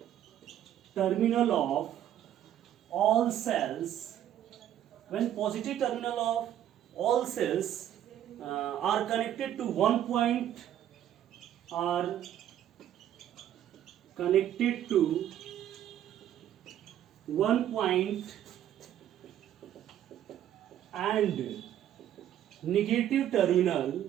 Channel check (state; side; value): quieter; left; 11.2 dB